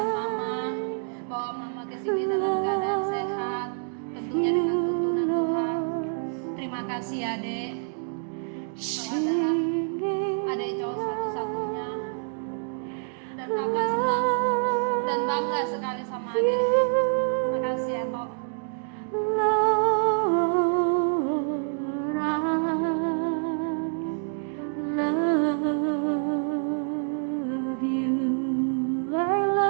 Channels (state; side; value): silent; left; 60 dB below the other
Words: mama, bawa mama ke sini dalam keadaan sehat, tentunya dengan tuntunan Tuhan. Terima kasih ya Dek. Kau adalah adik cowok satu-satunya, dan kakak senang dan bangga sekali sama adik. Makasih ya Tok.